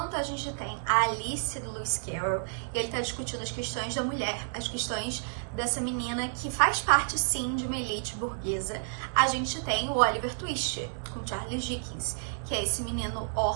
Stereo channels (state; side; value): silent; left; digital silence